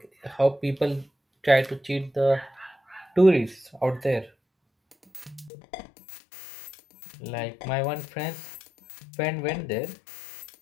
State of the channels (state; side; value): drops out; right; at 5.5 s